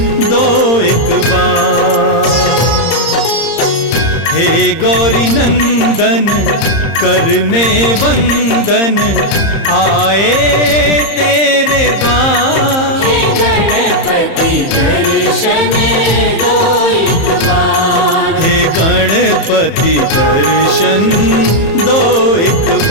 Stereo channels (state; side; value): late; right; 30 ms